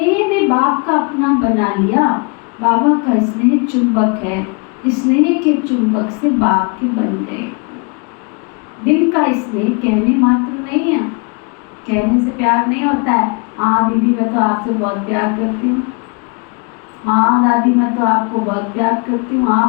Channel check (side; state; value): right; quieter; 33.9 dB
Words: ने बाप का अपना बना लिया। बाबा का स्नेह चुंबक है, स्नेह के चुंबक से बाप के बन गए। दिल का स्नेह कहने मात्र नहीं है, कहने से प्यार नहीं होता है। हाँ दीदी मैं तो आपसे बहुत प्यार करती हूँ, हाँ दादी मैं तो आपको बहुत प्यार करती हूँ,